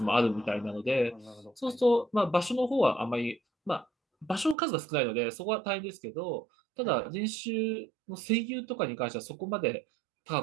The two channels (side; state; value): left; drops out; at 4.5 s